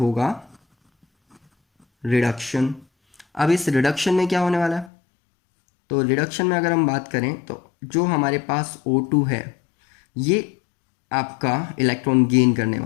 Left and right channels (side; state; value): right; drops out; at 4.9 s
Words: रिडक्शन। अब इस रिडक्शन में क्या होने वाला है? तो रिडक्शन में अगर हम बात करें तो जो हमारे पास O2 है, ये आपका इलेक्ट्रॉन गेन करने